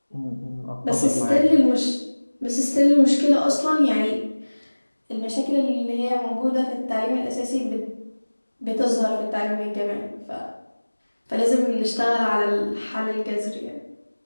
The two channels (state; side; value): inverted; both; correlation -1.00